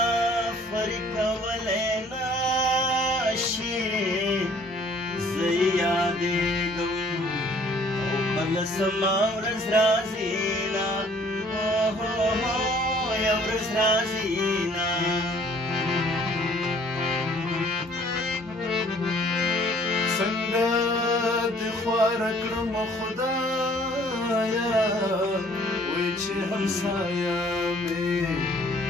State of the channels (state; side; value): normal; both; correlation 0.57